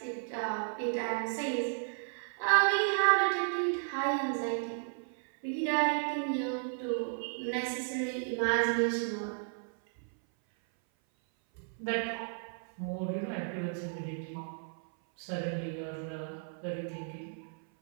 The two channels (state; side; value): silent; left; 55 dB below the other